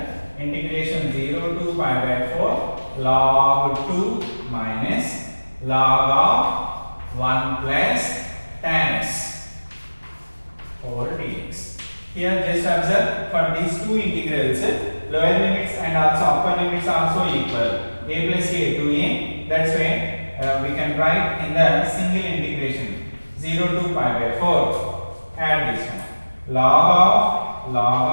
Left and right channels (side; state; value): both; inverted; correlation -1.00